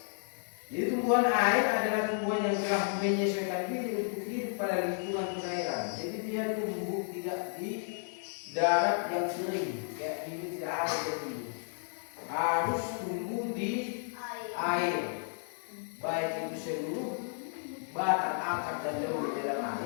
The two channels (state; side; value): silent; right; 56 dB below the other